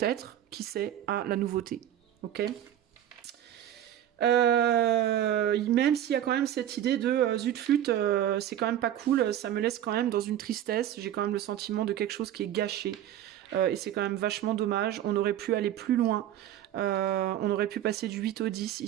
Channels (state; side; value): quieter; left; 11.4 dB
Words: qui sait, à la nouveauté. Ok ? Même s'il y a quand même cette idée de zut flûte, c'est quand même pas cool, ça me laisse quand même dans une tristesse, j'ai quand même le sentiment de quelque chose qui est gâché. Et c'est quand même vachement dommage. On aurait pu aller plus loin. On aurait pu passer du 8 au 10,